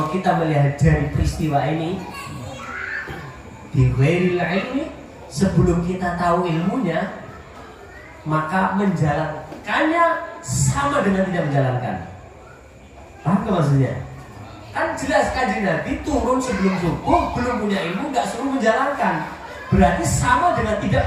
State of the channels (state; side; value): identical; both; correlation 1.00